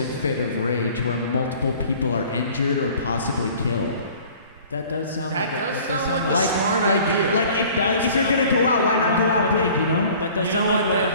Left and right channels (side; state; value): both; inverted; correlation -0.49